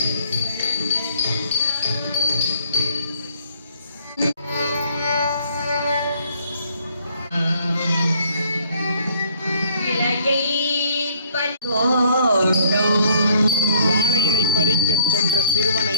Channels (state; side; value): inverted; both; correlation -0.63